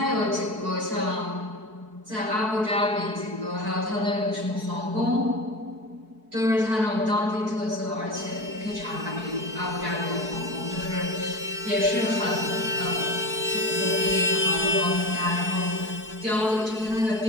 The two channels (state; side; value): late; left; 4.6 ms